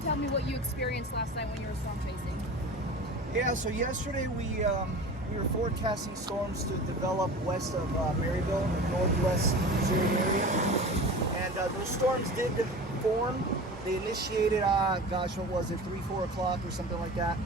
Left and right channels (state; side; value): normal; both; correlation 0.35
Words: tell me what you experienced last night when you were storm chasing. Yeah, so yesterday we were forecasting storms to develop west of Maryville, in the northwest Missouri area. And those storms did form. They initiated, what was it, 3, 4 o'clock or something like that.